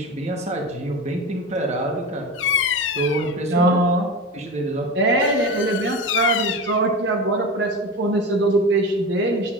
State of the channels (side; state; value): both; normal; correlation 0.25